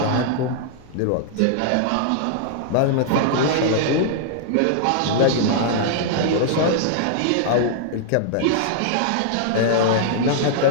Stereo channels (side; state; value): both; different; correlation -0.01